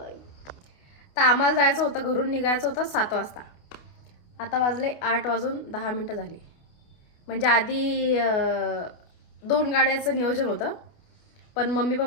तर आम्हाला जायचं होतं, घरून निघायचं होतं 7 वाजता. आता वाजले 8:10 झाले. म्हणजे आधी 2 गाड्याचं नियोजन होतं, पण मम्मी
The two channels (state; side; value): late; right; 28 ms